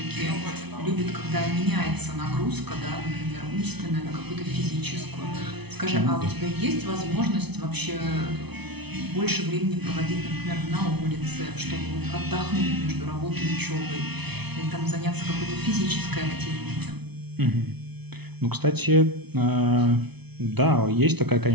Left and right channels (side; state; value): left; late; 0.99 ms